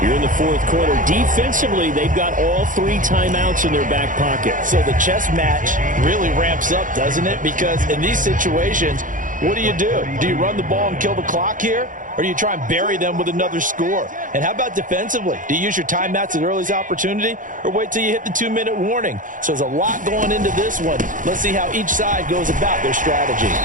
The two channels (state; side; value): late; left; 0.38 ms